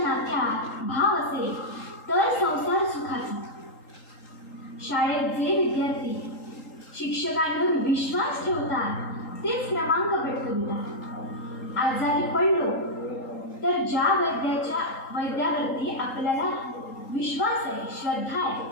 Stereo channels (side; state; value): right; late; 3.8 ms